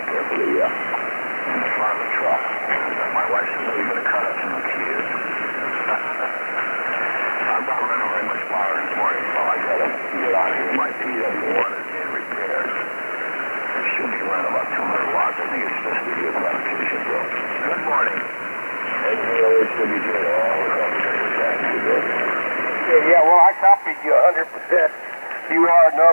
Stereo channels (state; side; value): inverted; both; correlation -1.00